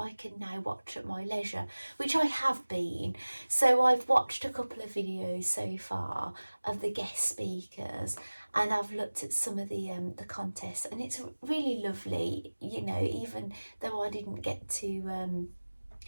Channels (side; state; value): both; inverted; correlation -1.00